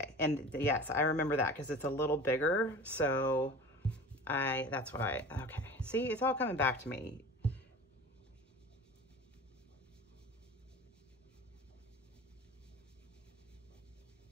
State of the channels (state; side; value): normal; both; correlation 0.38